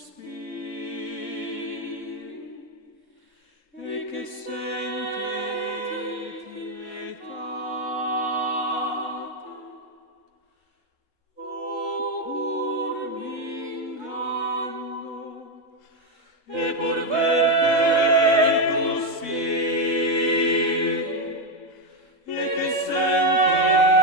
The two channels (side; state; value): right; late; 3.7 ms